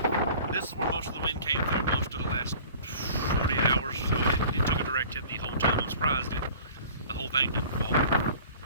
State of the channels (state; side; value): inverted; both; correlation -0.46